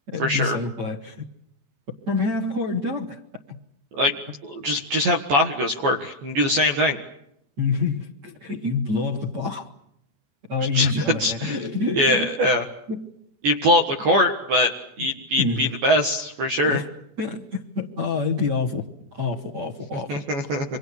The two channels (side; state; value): left; late; 14 ms